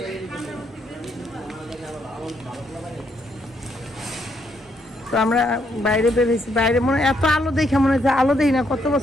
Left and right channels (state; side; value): normal; both; correlation 0.75